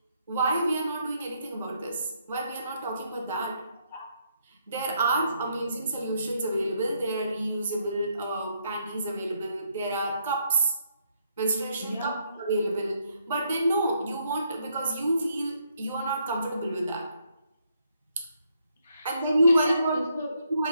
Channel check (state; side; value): inverted; both; correlation -0.74